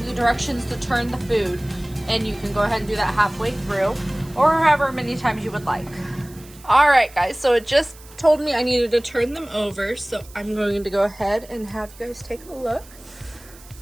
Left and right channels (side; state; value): right; noise; hiss, 22 dB below the sound